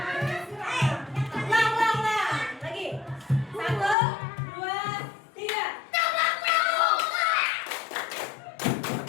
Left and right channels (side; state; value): right; drops out; at 4.0 s